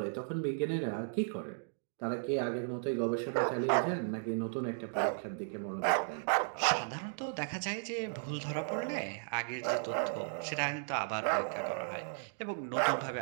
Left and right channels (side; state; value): left; silent; digital silence